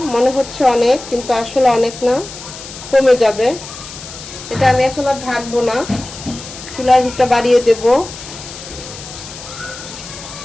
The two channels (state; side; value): noise; left; hiss, 13 dB below the sound